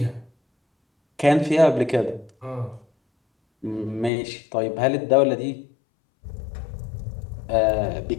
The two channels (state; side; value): drops out; right; at 4.1 s